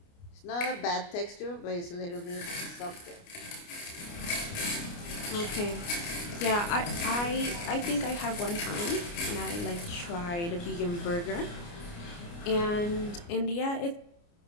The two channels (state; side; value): late; right; 29 ms